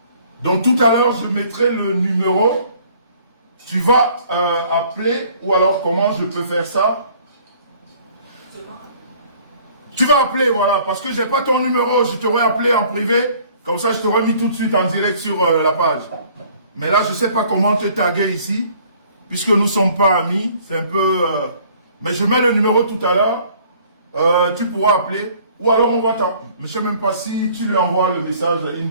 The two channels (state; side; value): inverted; both; correlation -0.56